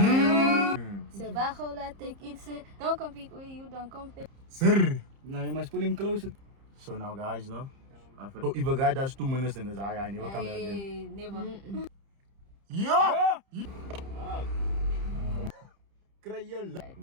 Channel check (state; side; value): late; left; 30 ms